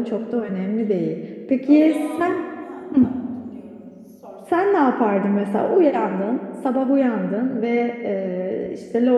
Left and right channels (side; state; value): both; identical; correlation 1.00